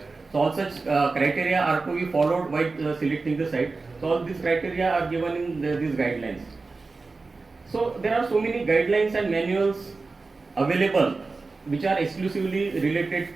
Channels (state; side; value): quieter; left; 3.9 dB